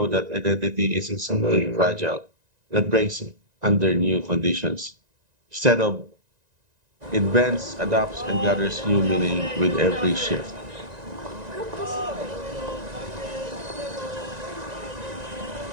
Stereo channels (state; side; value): late; left; 1.9 ms